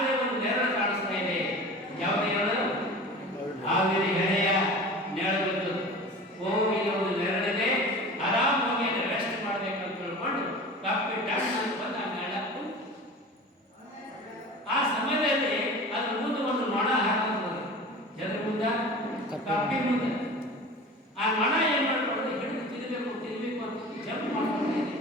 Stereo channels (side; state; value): both; normal; correlation 0.37